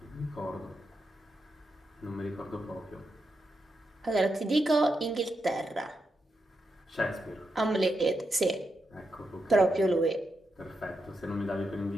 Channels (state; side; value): normal; both; correlation 0.85